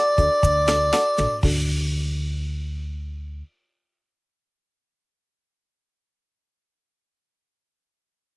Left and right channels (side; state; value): both; identical; correlation 1.00